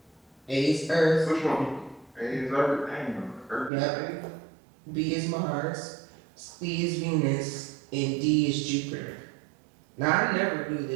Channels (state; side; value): drops out; left; at 3.7 s